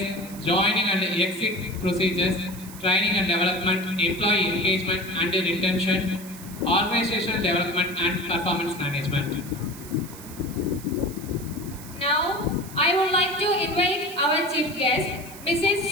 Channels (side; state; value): right; noise; hiss, 16 dB below the sound